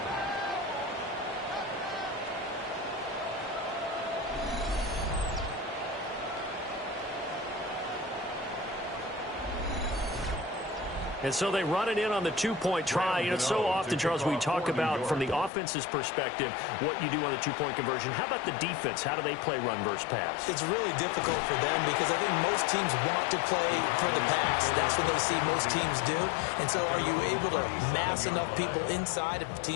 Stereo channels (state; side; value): drops out; right; at 15.5 s